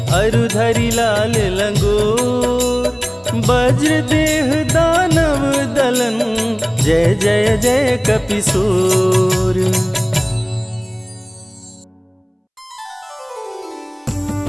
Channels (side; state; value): both; identical; correlation 1.00